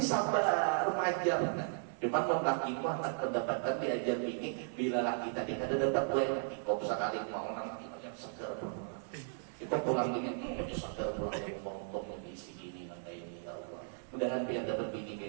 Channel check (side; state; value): left; silent; digital silence